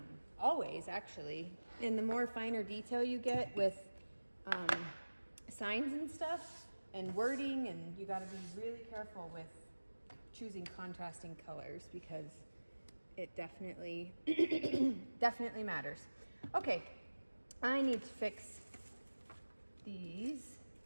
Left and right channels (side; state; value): both; inverted; correlation -1.00